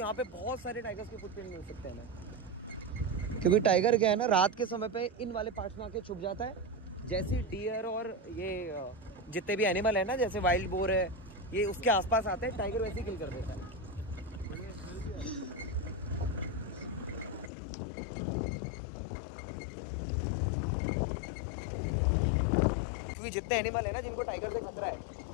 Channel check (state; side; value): drops out; right; at 17.5 s